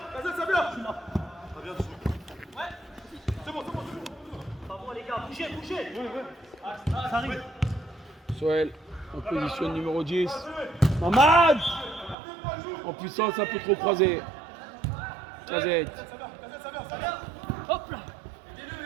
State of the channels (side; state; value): left; drops out; at 12.2 s